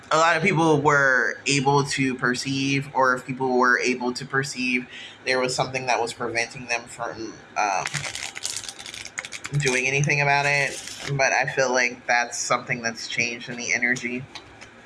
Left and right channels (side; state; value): both; identical; correlation 1.00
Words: a lot of people were able to perceive, or if people were able to perceive, there was something that was preventing them from doing anything about it. But I feel like that's something that's changed in the energy.